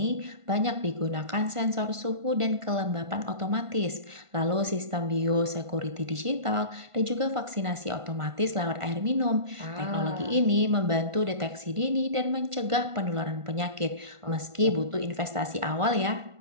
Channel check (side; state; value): left; late; 1.5 ms